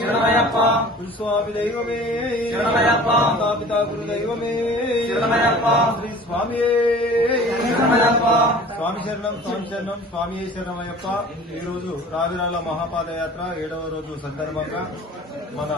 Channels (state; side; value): normal; both; correlation 0.44